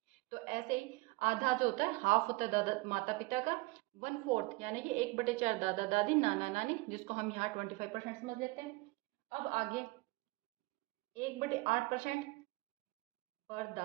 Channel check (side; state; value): left; quieter; 22.5 dB